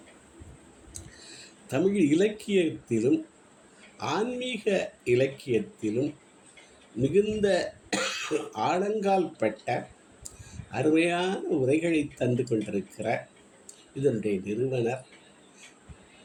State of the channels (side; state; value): both; identical; correlation 1.00